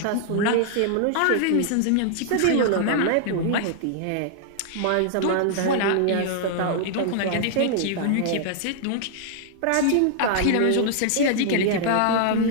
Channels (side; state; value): both; different; correlation -0.01